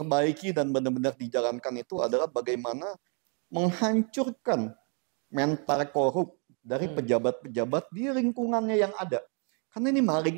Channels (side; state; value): left; quieter; 38.7 dB